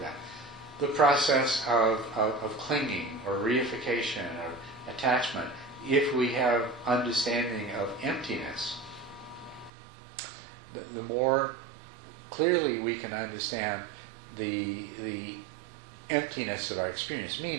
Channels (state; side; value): drops out; left; at 9.7 s